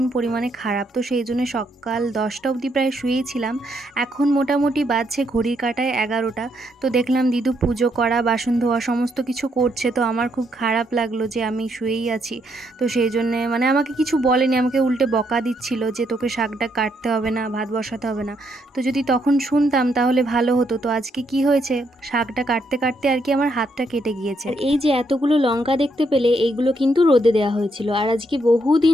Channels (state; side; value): normal; both; correlation 0.75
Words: পরিমাণে খারাপ, তো সেই জন্য সকাল ১০টা অবধি প্রায় শুয়েছিলাম। এখন মোটামুটি বাজছে ঘড়ির কাঁটায় ১১টা। তো দেখলাম দিদু পুজো করা, বাসন ধোয়া সমস্ত কিছু করছে। তো আমার খুব খারাপ লাগলো যে আমি শুয়েই আছি। তো সেই জন্যে মানে আমাকে কিছু বলেনি, আমাকে উল্টে বকা দিচ্ছিল যে তোকে শাকটা কাটতে হবে না, ভাত বসাতে হবে না। তো যদি তখন শুনতাম তাহলে ভালো হতো। তো আজকে কি হয়েছে, শাকটা কাটতে কাটতে আর কি আমার হাতটা কেটে গিয়েছে। আর এই যে এতগুলো লঙ্কা দেখতে পেলে, এইগুলো কিন্তু রোদে দেওয়া হয়েছিল। আর আজকে